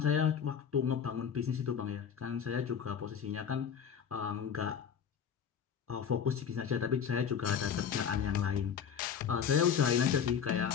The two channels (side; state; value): right; quieter; 7.5 dB